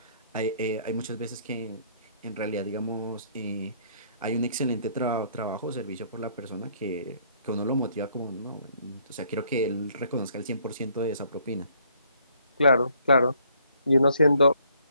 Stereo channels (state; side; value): inverted; both; correlation -0.65